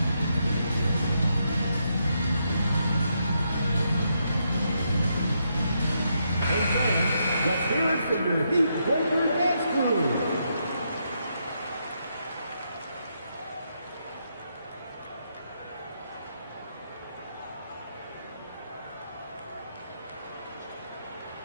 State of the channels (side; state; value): both; inverted; correlation -0.80